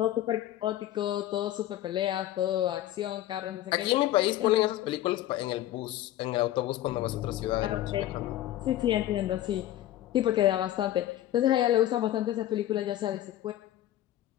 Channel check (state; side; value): quieter; right; 13.6 dB